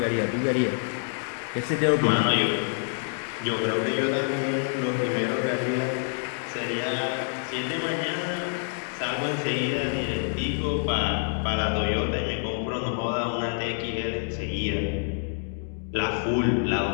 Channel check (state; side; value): silent; right; 60 dB below the other